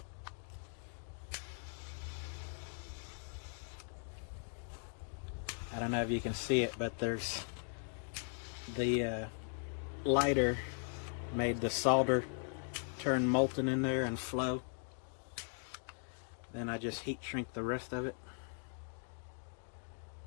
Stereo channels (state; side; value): silent; right; 51 dB below the other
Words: I don't know if you can see it, but there's the lighter made the solder turn molten in there and flow. Then I just heat shrink the rest of it.